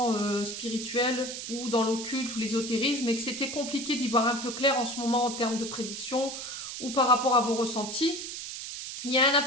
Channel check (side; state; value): right; noise; hiss, 7 dB below the sound